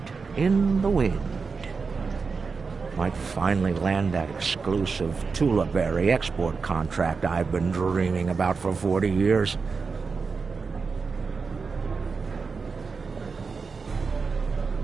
in the wind. Might finally land that exclusive Tulaberry export contract I've been dreaming about for 40 years.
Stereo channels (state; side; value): quieter; left; 4.9 dB